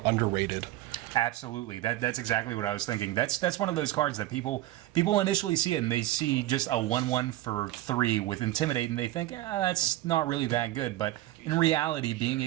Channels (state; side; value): quieter; left; 15.4 dB